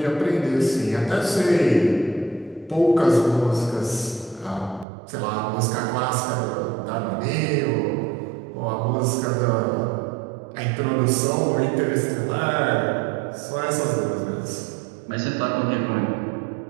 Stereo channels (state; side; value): drops out; left; at 4.9 s